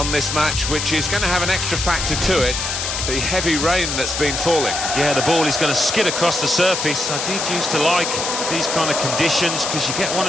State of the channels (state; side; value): noise; left; hiss, 3 dB below the sound